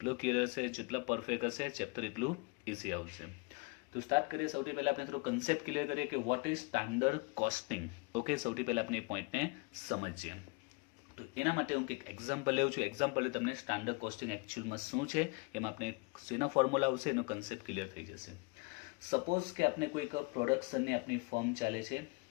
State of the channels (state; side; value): quieter; right; 28.3 dB